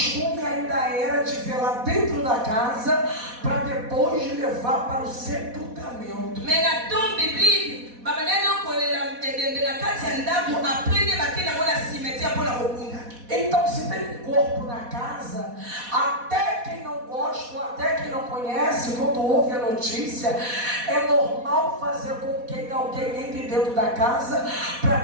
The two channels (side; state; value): left; late; 4.1 ms